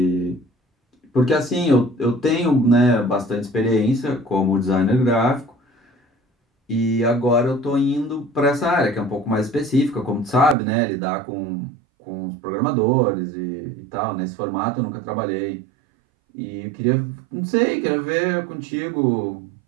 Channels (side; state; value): left; drops out; at 10.6 s